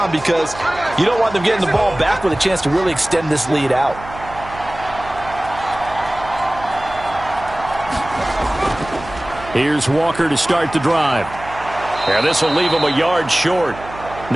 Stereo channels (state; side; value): noise; right; hum, 15 dB below the sound